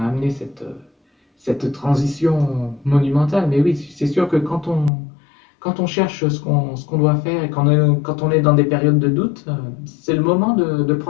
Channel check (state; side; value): drops out; right; at 4.9 s